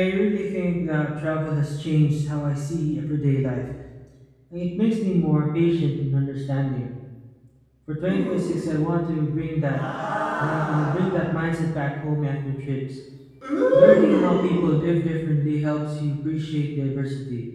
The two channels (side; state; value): both; identical; correlation 1.00